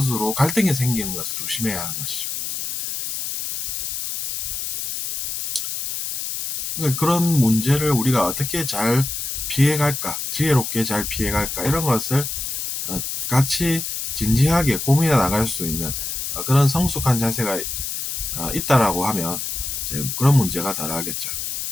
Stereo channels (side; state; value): left; noise; hiss, 4 dB below the sound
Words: 갈등이 생기는 것을 조심해야 하는 것이죠. 그러니까 그런 문제를 우리가 어떻게 잘 피해갈까, 지혜롭게 잘 피해갈까 이런 것을 같이 진지하게 고민해 나갈 수 있는 그런 성숙한 자세가 있다라고 하면 이제 그런 문제가 덜하겠죠.